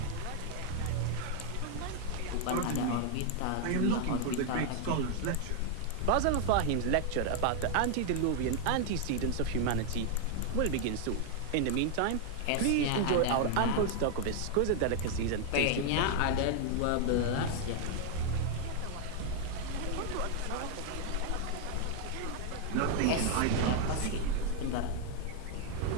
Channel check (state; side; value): different; both; correlation 0.00